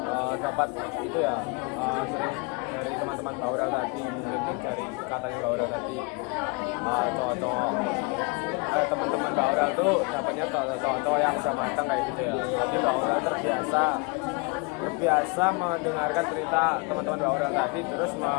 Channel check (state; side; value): quieter; right; 29.6 dB